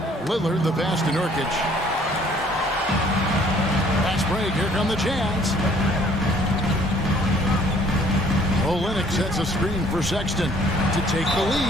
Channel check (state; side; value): normal; both; correlation 0.59